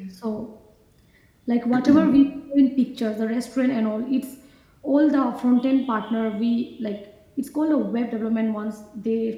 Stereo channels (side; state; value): both; identical; correlation 1.00